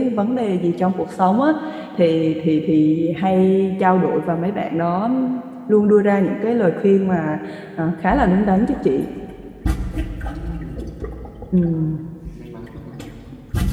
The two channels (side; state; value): both; identical; correlation 1.00